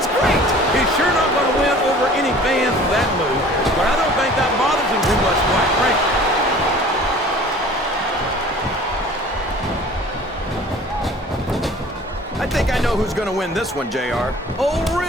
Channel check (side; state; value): both; normal; correlation 0.47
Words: great. He's sure not going to win over any fans with that move, but I don't think that bothers him too much, quite frankly. I think I know who's going to win this one, JR. Oh,